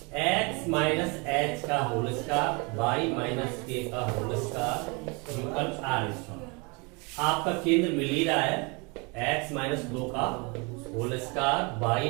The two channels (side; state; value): left; quieter; 30.1 dB